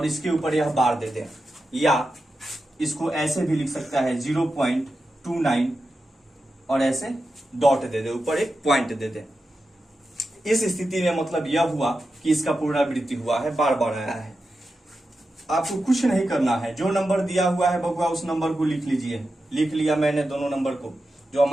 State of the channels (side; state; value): both; normal; correlation 0.90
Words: इसके ऊपर यह बार दे दें, या इसको ऐसे भी लिख सकता है 0.29 और ऐसे डॉट दे दे, ऊपर एक पॉइंट दे दे। इस स्थिति में मतलब यह हुआ कि इसका पुनरावृत्ति हुआ है, बार बार आया है। आपको कुछ नहीं करना है, जो नंबर दिया हुआ है बबुआ उस नंबर को लिख लीजिए। लिख लिया मैंने दोनों नंबर को, जो